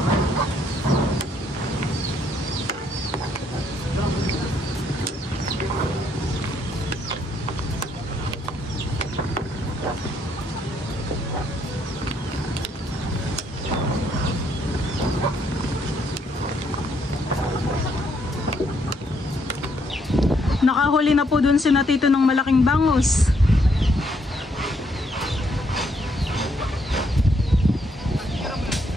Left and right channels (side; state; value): both; normal; correlation 0.72